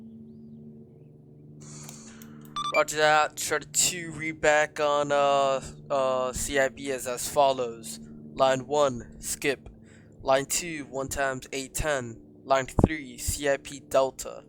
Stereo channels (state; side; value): identical; both; correlation 1.00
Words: Roger that. Try to read back on CIB as follows. Line 1, skip. Line 2, 1 times 810. Line 3, CIP Delta.